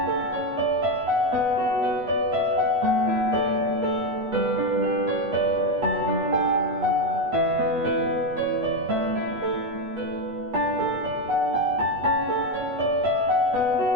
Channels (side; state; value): left; late; 8.2 ms